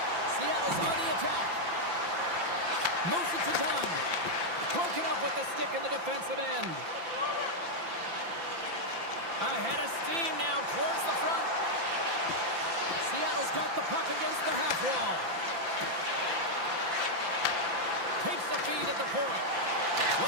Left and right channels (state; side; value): late; left; 5.9 ms